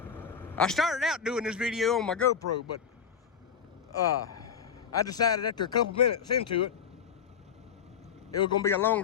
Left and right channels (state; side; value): quieter; right; 7.3 dB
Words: I started out doing this video on my GoPro, but I decided after a couple minutes into it, it was gonna be a